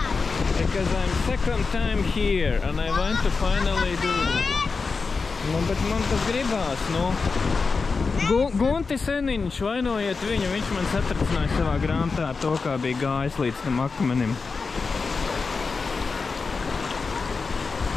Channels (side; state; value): right; quieter; 4.6 dB